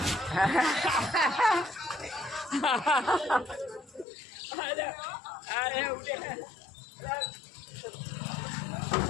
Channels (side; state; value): right; drops out; at 4.0 s